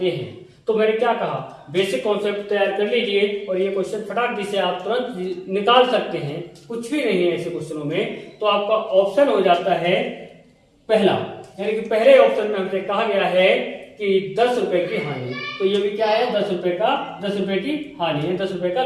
हैं। तो मैंने क्या कहा, बेसिक कॉन्सेप्ट तैयार कर लीजिए और ये क्वेश्चन फटाक से आप तुरंत निकाल सकते हैं। कुछ भी नहीं है ऐसे क्वेश्चनों में। तो आपका ऑप्शन हो जाता है पहला, यानी कि पहले ऑप्शन में हमसे कहा गया है कि 10 रुपए की हानि। तो ये भी क्या है? 10 रुपए की हानि है, 10 रुपए का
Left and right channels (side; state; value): both; identical; correlation 1.00